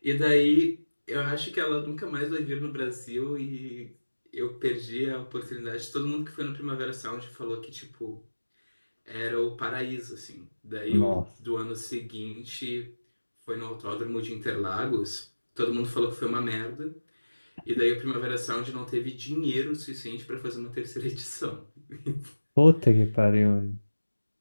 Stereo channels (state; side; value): inverted; both; correlation -1.00